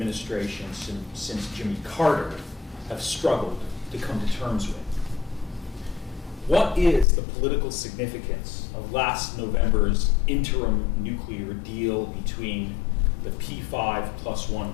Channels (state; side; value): drops out; right; at 7.1 s